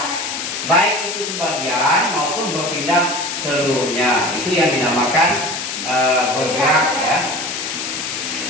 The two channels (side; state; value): left; noise; hiss, 4 dB below the sound